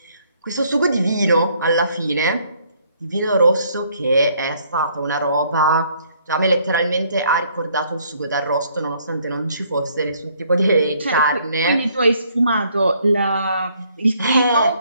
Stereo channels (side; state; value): both; inverted; correlation -0.65